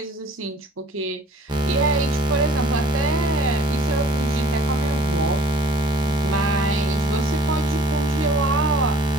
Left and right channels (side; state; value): both; normal; correlation 0.53